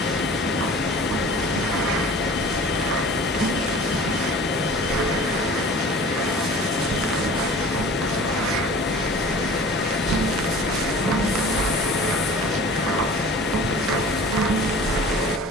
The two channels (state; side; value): normal; both; correlation 0.43